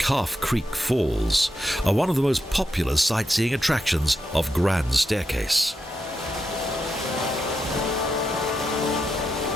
Creek Falls are one of the most popular sightseeing attractions of Grand Staircase.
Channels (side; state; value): both; normal; correlation 0.85